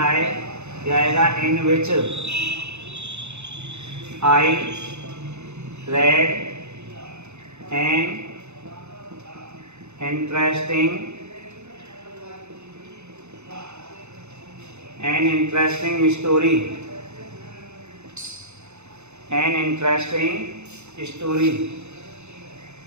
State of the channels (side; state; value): left; late; 0.81 ms